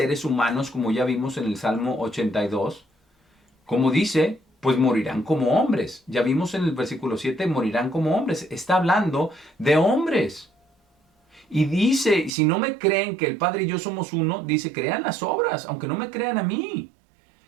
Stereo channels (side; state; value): left; drops out; at 12.3 s